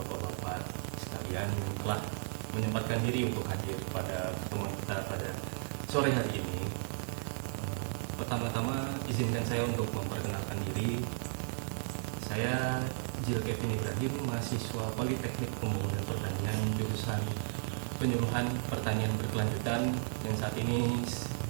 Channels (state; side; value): silent; left; 55 dB below the other